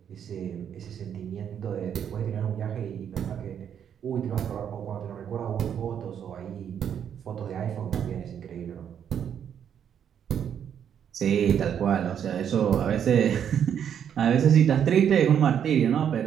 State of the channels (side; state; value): left; quieter; 8.7 dB